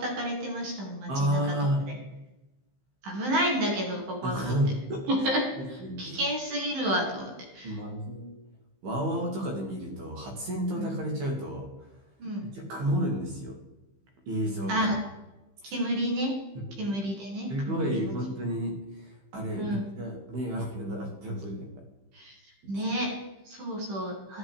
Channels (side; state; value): left; late; 15 ms